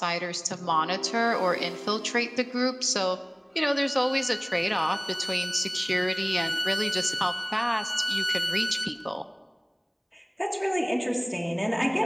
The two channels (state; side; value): identical; both; correlation 1.00